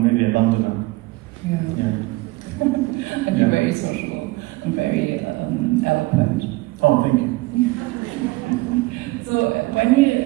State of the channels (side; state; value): left; quieter; 21.6 dB